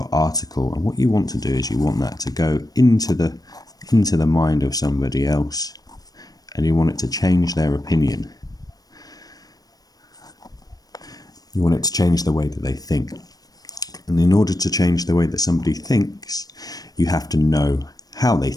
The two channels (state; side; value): late; right; 0.18 ms